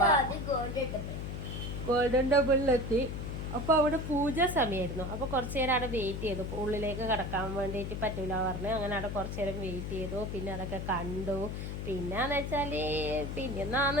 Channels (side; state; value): left; noise; hum, 5 dB below the sound